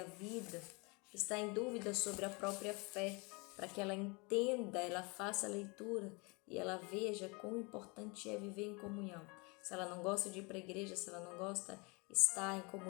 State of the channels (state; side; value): quieter; right; 29.2 dB